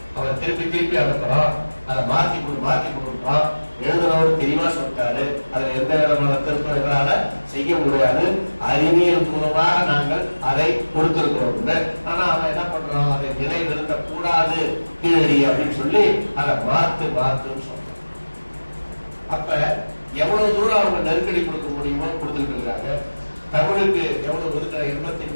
அவன் திருப்பி அனுப்புறான், அதை மாத்தி கொடுக்குறான். எழுதுனவர் தெளிவா சொல்லிட்டாரு, அதுல எந்த விதமான திருத்தங்களால செய்ய முடியாது, அறிவியல் மூலமாக நாங்கள் அதை கொடுத்திருக்கிறோம். ஆனா அவன் என்ன பண்றான், அதை நிலைநிறுத்த கூடாது கீழடி அப்படின்னு சொல்லி அதை மாத்துன்னு சொல்றான். அப்ப எவ்வளவு தூரம் அவங்க நெருக்கடி கொடுக்க முடியுமோ கொடுத்துட்டு இருக்காங்க. தமிழுக்கு எவ்வளவு ஒதுக்குற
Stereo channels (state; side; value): inverted; both; correlation -1.00